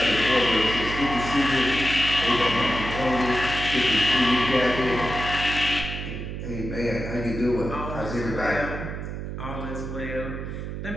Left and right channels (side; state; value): right; noise; hum, 6 dB below the sound